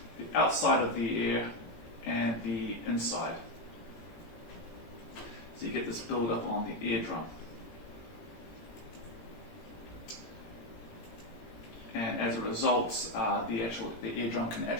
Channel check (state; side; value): late; right; 17 ms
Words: the outside of the ear and the inside. So you get this build-up on the eardrum. And as a result, the eardrum can